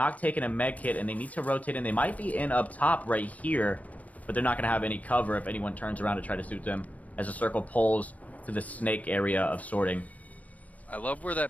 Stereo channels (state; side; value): late; right; 0.069 ms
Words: taking a med kit, and they need to rotate in. They might be in up top right here, but they're not going to have any cover if anyone turns around to try to shoot them as the circle pulls to the snake area of sorting. I love where